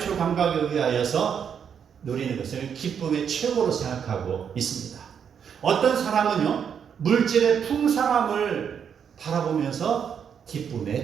감각에 의하여서 누리는 것을 기쁨의 최고로 생각하고 있습니다. 어떤 사람은요, 물질의 풍성함을 바라보면서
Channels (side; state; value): left; quieter; 7.6 dB